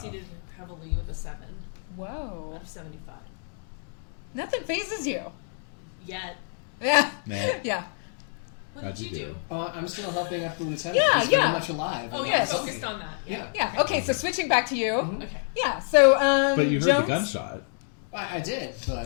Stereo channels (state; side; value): silent; right; 60 dB below the other